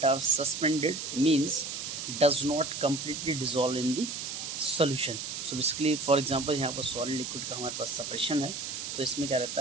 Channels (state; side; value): noise; right; hiss, 6 dB below the sound